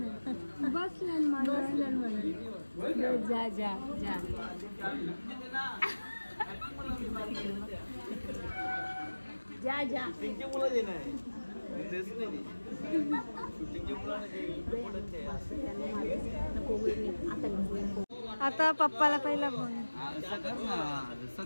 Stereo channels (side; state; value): both; inverted; correlation -1.00